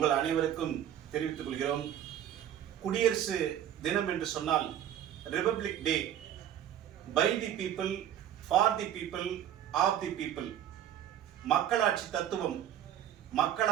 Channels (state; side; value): quieter; left; 10.7 dB